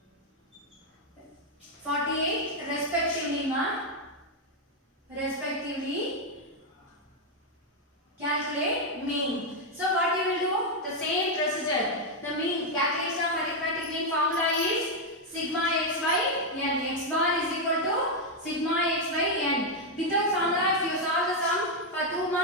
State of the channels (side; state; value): both; normal; correlation 0.01